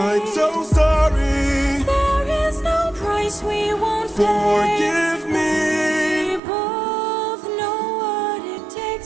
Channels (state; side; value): drops out; left; at 6.4 s